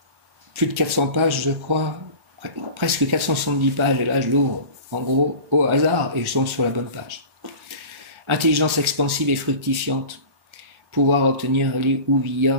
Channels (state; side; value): late; left; 1.4 ms